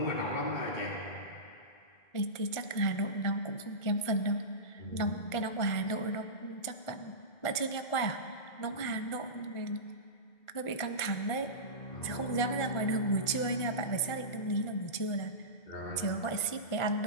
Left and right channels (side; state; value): right; late; 1.5 ms